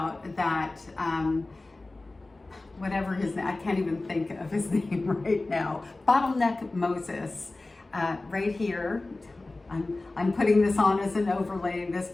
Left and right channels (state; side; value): quieter; right; 3.1 dB